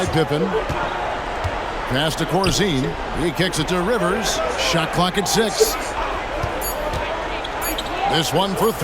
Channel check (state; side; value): identical; both; correlation 1.00